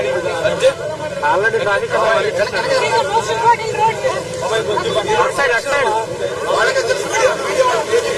ఆల్రెడీ ట్రాఫిక్ సైడ్ అటు సైడ్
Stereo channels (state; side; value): identical; both; correlation 1.00